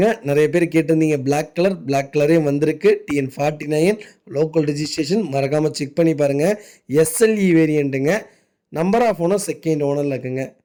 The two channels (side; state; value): both; identical; correlation 1.00